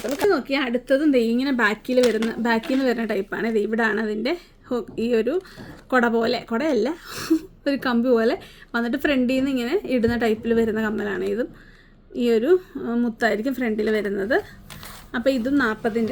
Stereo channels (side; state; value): both; identical; correlation 1.00